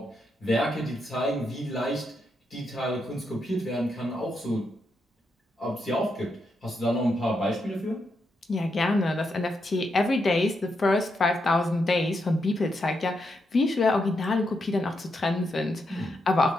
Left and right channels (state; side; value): normal; both; correlation 0.82